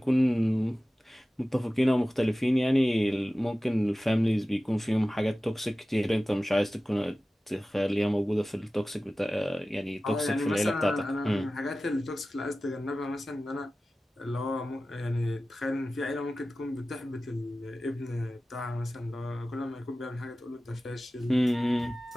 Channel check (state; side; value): normal; both; correlation 0.96